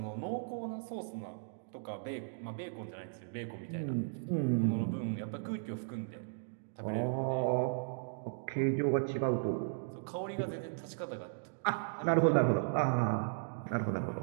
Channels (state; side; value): silent; left; digital silence